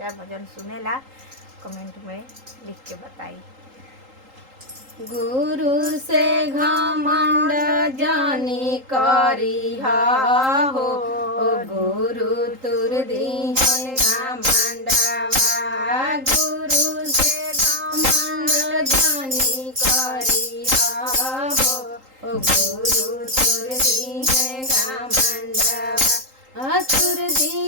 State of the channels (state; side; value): late; left; 3.8 ms